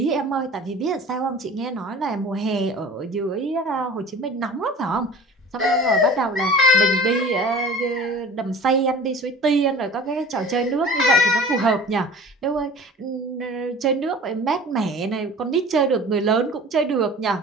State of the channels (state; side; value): normal; both; correlation 0.42